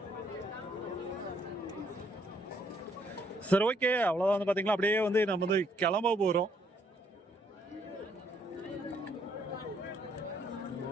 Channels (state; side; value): normal; both; correlation 0.69